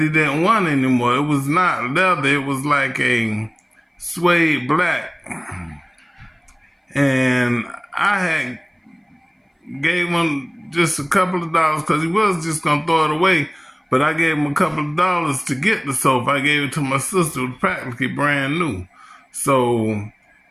didn't want anymore. It was not leather. It was like a suede black. And I had gave him just a couple of dollars because he was just going to throw it away. But I gave him a couple of dollars to get the sofa. I gave it to my sister. It was practically brand new. So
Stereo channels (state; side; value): identical; both; correlation 1.00